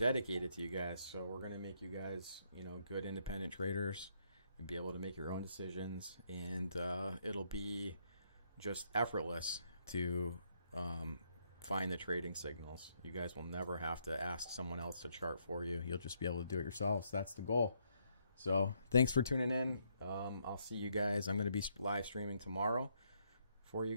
to you guys. So we're gonna make you guys, you know, good independent traders and be able to make your own decisions, and it'll be just effortless to find the trading signals. You guys will never have to ask someone else to chart for you. You'll just be able to do it yourselves. That's the goal. So thanks for tuning in. I'll see you guys. I'm going to be live streaming tomorrow for you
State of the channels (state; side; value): inverted; both; correlation -0.74